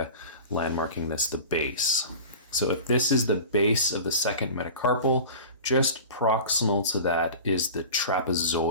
landmarking this the base. So if this is the base of the second metacarpal, just proximal to that is the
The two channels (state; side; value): inverted; both; correlation -0.35